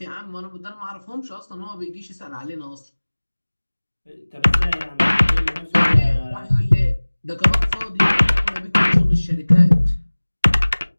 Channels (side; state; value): both; inverted; correlation -1.00